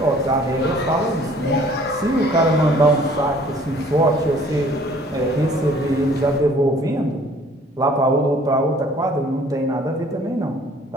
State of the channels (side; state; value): both; normal; correlation 0.55